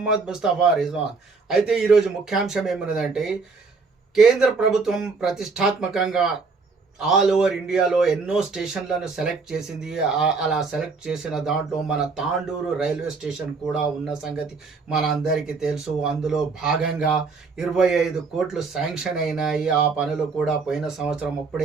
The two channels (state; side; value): quieter; left; 4.5 dB